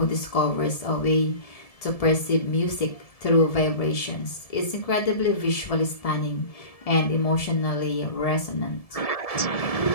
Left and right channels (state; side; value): late; right; 1.7 ms